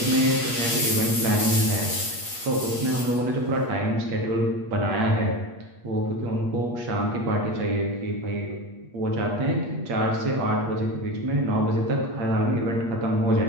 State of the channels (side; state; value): left; late; 8.5 ms